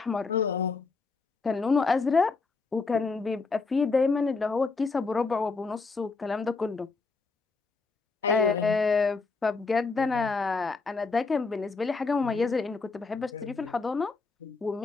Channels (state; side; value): quieter; right; 4.2 dB